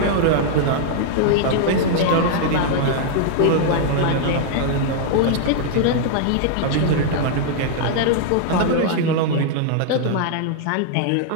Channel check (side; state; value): both; different; correlation -0.01